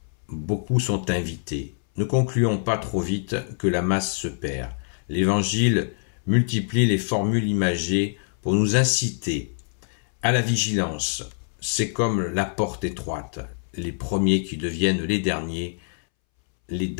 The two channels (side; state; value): right; silent; 62 dB below the other